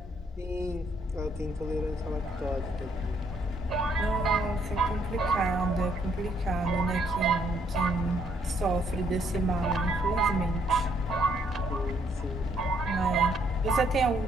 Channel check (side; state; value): both; normal; correlation 0.69